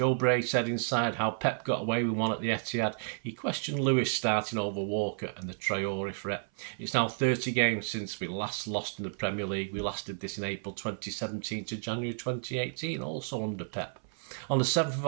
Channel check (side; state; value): left; silent; 56 dB below the other